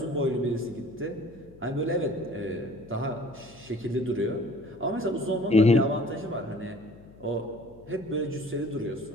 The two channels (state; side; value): noise; left; hum, 23 dB below the sound